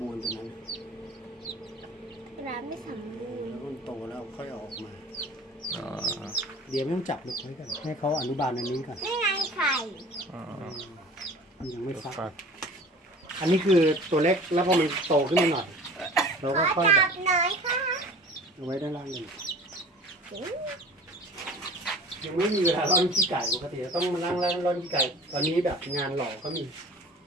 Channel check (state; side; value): normal; both; correlation 0.43